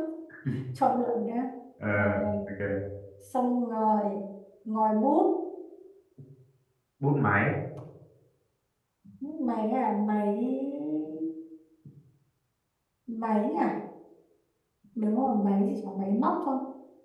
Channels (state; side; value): identical; both; correlation 1.00